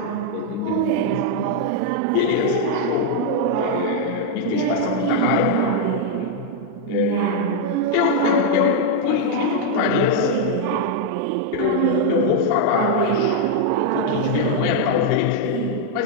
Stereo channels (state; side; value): different; both; correlation -0.01